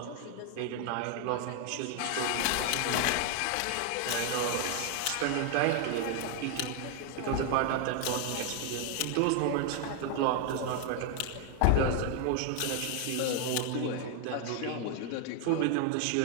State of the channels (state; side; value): different; both; correlation 0.00